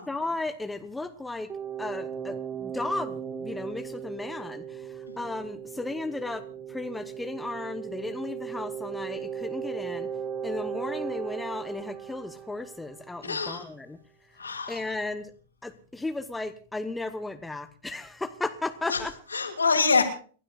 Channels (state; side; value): normal; both; correlation 0.15